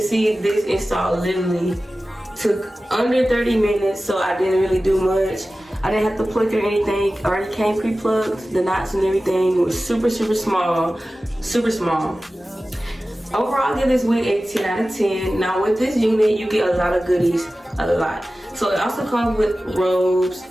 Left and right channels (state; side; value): normal; both; correlation 0.96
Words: see, this install literally took under 30 minutes, so I didn't really do much. I didn't have to pluck or anything. It already came pre-plucked. The knots and everything was super small. Overall, I give this wig a 10 out of 10. Now with this unit, you get a lot of goodies, a lot. So it also comes with robes,